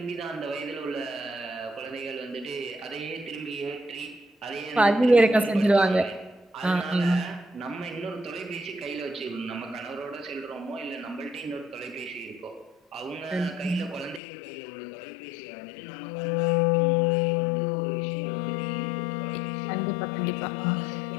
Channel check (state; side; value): drops out; right; at 14.2 s